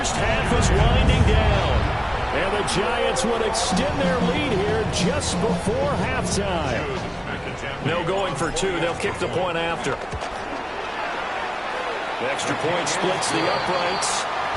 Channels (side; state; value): both; identical; correlation 1.00